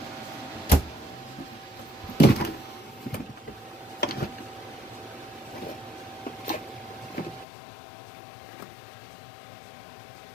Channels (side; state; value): right; drops out; at 7.5 s